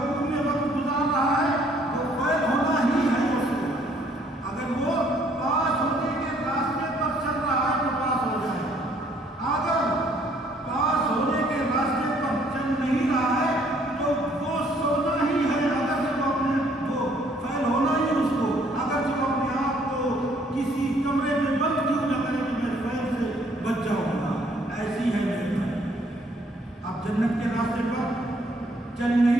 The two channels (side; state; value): both; normal; correlation 0.64